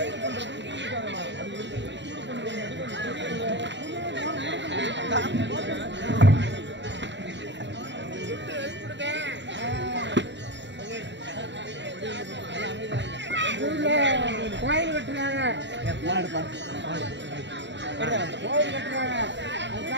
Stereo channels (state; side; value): late; left; 0.52 ms